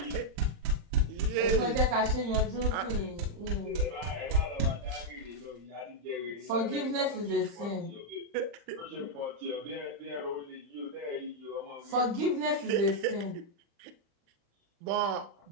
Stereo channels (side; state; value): left; late; 35 ms